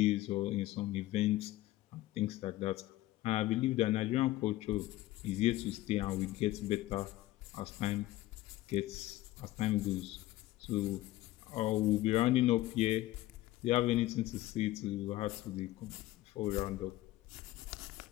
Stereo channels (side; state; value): right; quieter; 16.5 dB